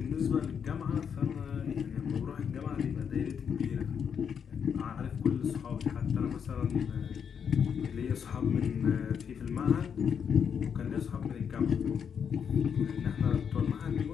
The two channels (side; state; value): right; quieter; 7.3 dB